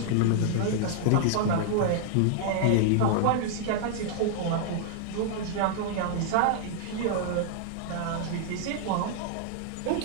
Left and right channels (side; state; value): both; different; correlation 0.00